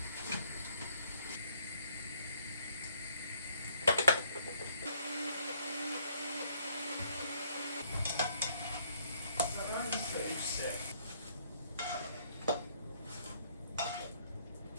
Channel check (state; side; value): inverted; both; correlation -0.66